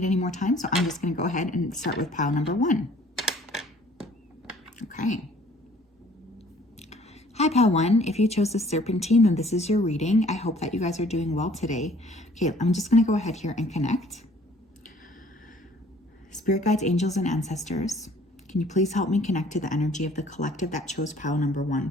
any more time, so I'm just going to go ahead and start with pile number 1. Okay. Hi, pile 1. If you chose the Serpentine, then this is your reading. I hope that you guys are doing well today. Okay, I'm just going to go ahead here and connect. Spirit guides, angels, and ancestors, can you please help me connect to the energy of the collective that chose pile number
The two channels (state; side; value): normal; both; correlation 0.56